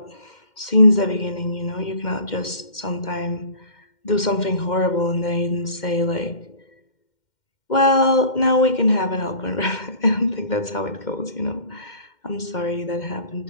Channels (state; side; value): late; right; 2.1 ms